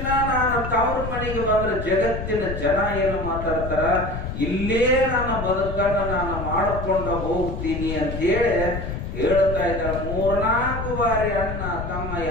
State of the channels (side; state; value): left; noise; rumble, 6 dB below the sound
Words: ನಾನು ತವ್ರ ಮನೆಗೆ ಬಂದ್ರೆ ಜಗತ್ತಿನ ಜನ ಏನು ಮಾತಾಡ್ತಾರ, ಇಲ್ಲೇ ನನ್ನ ಬದುಕನ್ನ ನಾನು ಮಾಡಿಕೊಂಡು ಹೋಗ್ತೀನಿ ಅಂತೇಳಿ ಹೇಳ್ತಾ ಇದ್ದಾರೆ. 3-4 ಬಾರಿ ಅಣ್ಣ ತಮ್ಮ